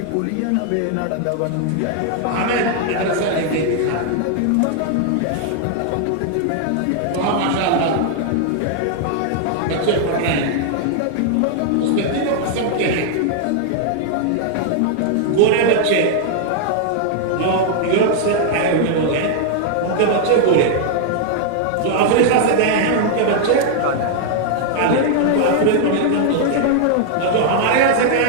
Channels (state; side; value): different; both; correlation -0.01